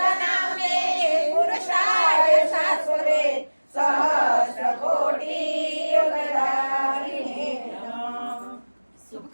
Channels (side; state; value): both; inverted; correlation -1.00